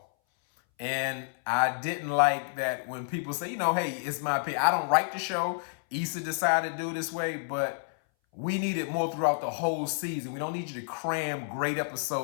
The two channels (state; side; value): silent; right; 58 dB below the other